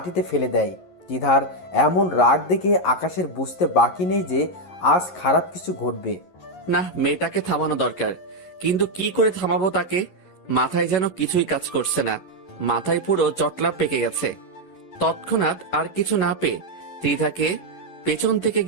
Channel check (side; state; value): right; late; 11 ms